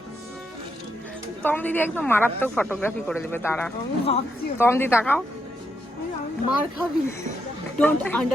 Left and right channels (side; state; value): both; normal; correlation 0.81